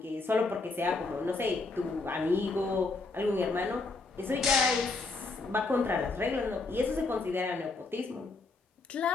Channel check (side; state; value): right; quieter; 3.6 dB